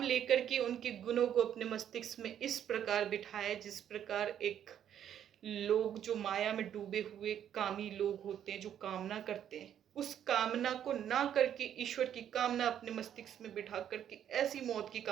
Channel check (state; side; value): quieter; left; 9.8 dB